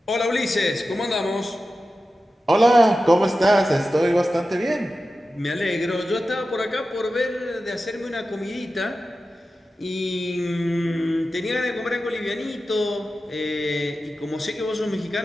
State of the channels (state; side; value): normal; both; correlation 0.93